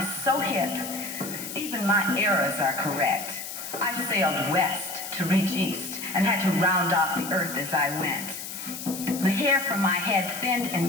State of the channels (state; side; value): noise; left; hiss, 8 dB below the sound